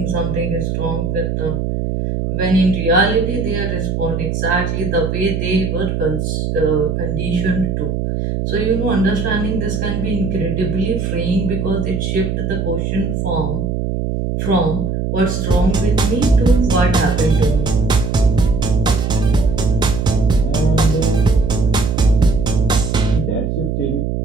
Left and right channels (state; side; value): noise; right; hum, 1 dB below the sound